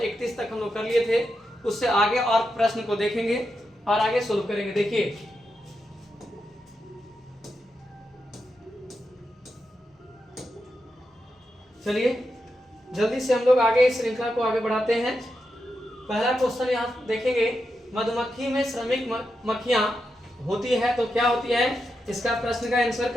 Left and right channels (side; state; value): both; normal; correlation 0.87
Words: तक हम लोग कर लिए थे, उससे आगे और प्रश्न को देखेंगे और आगे सोल्व करेंगे। देखिए, चलिए जल्दी से हम लोग आगे इस श्रृंखला को आगे बढ़ाते हैं। पहला क्वेश्चन यहाँ देखेंगे, मधुमक्खी में श्रमिक मक्खियां होती है तो क्या होती है? इसका प्रश्न का आंसर